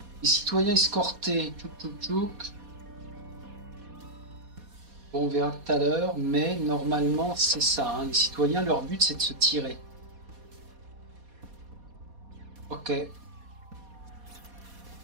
Les citoyens escortés. Tchouk tchouk tchouk. Bon, on verra tout à l'heure, mais normalement c'est ça. Hein. Les citoyens, leur but c'est de se tirer. Ok.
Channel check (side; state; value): left; late; 4.2 ms